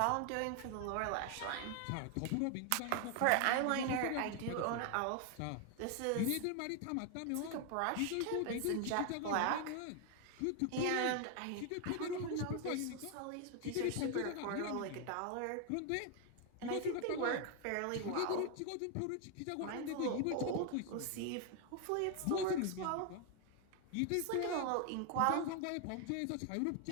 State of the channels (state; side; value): different; both; correlation 0.00